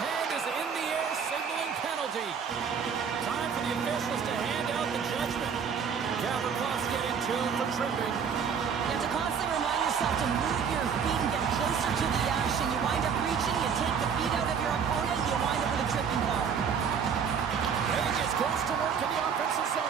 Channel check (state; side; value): quieter; left; 6.8 dB